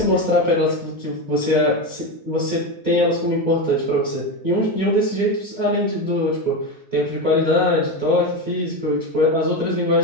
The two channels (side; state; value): both; normal; correlation 0.16